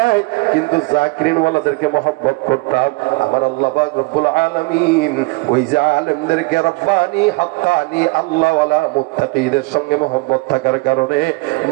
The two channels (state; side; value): quieter; left; 25.9 dB